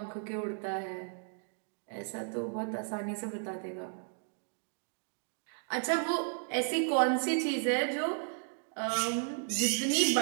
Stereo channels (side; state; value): left; silent; 55 dB below the other